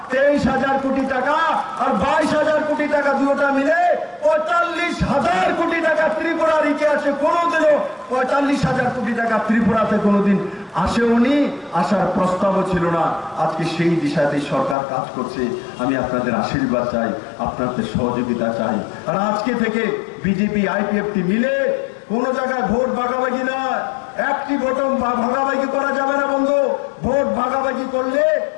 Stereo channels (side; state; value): right; drops out; at 14.8 s